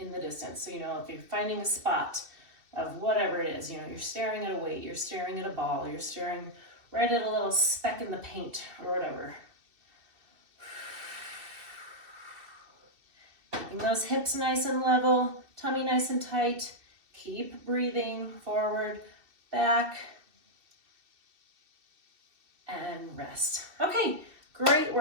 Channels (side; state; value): left; late; 2.6 ms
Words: the distance. So, if you're finding a spot of whatever it is, you're staring at a weight, you're staring at a ball, you're staring right at a little speck in the paint or whatever. Keeping those hips nice and level, tummy nice and tight. Keep breathing forward, back, and rest. Okay. Great